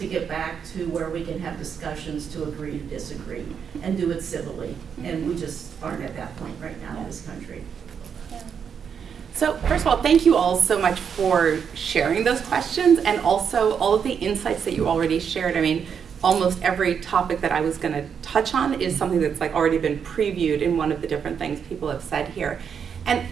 get back to where we can have discussions to agree to disagree and do it civilly. And we just aren't at that point right now in this country. So first of all, thank you all so much for sharing those questions and also all of the insights that you already shared. I mean, almost every topic that I was going to touch on is something that's like already been previewed in one of the different things people have said here. And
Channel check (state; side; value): quieter; left; 7.2 dB